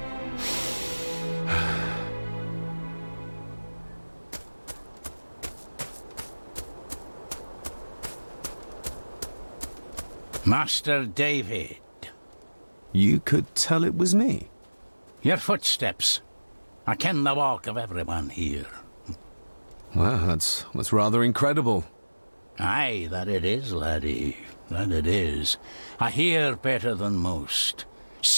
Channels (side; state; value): both; inverted; correlation -1.00